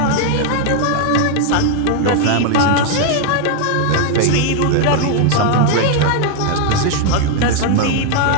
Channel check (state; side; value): different; both; correlation 0.00